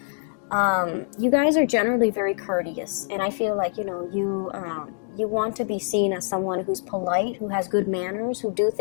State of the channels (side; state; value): right; silent; digital silence